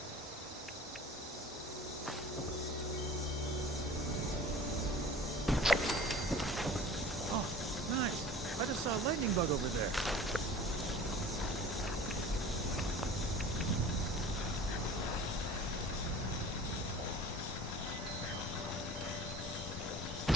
I just saw a lightning bug over there.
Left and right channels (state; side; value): normal; both; correlation 0.42